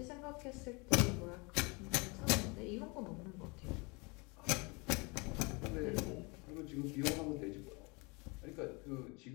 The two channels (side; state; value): right; quieter; 28.8 dB